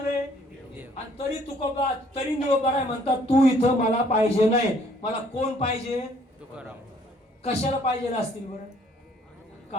आणि तरी तुकोबा तरी निळोबाराय म्हणतात तू इथं मला पाहिजे नाही. मला कोण पाहिजे? तुकाराम. कशाला पाहिजे असतील बरं?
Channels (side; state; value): both; normal; correlation 0.61